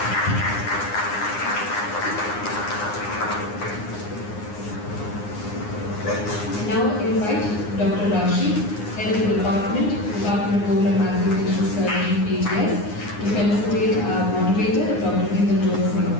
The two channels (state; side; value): late; right; 9.7 ms